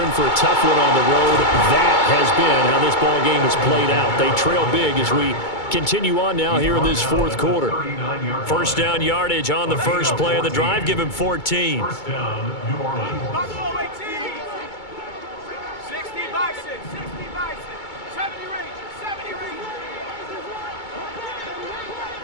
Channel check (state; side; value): late; right; 2.2 ms